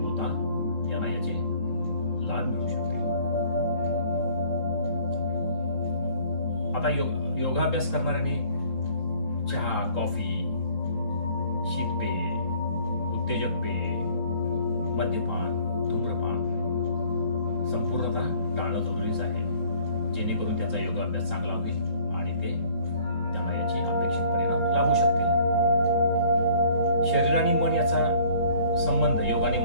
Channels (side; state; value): right; late; 3.7 ms